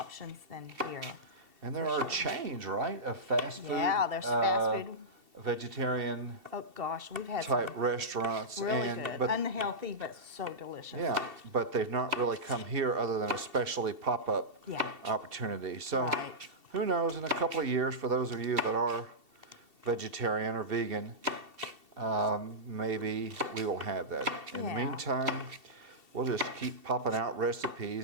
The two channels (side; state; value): left; late; 2.7 ms